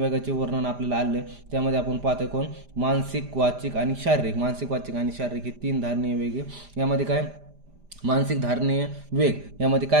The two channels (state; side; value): late; left; 5.0 ms